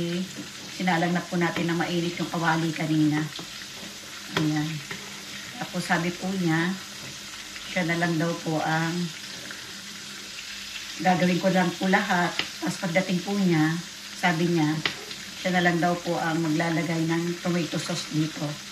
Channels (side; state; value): both; identical; correlation 1.00